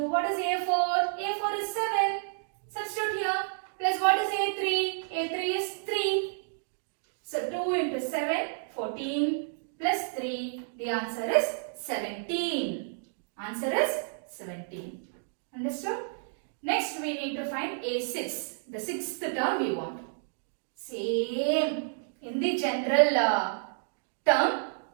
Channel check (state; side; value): silent; left; digital silence